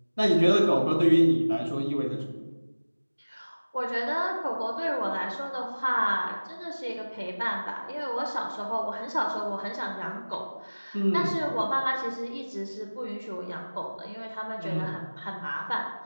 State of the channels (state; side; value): inverted; both; correlation -1.00